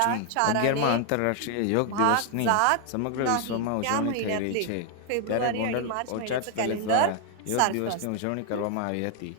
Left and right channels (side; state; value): both; different; correlation 0.00